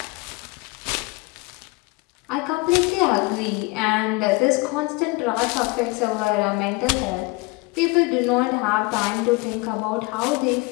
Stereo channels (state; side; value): quieter; right; 25.4 dB